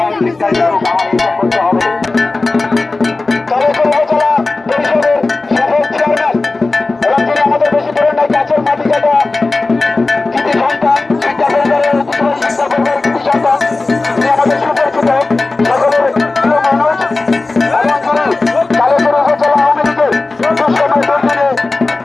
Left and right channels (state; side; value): quieter; right; 3.4 dB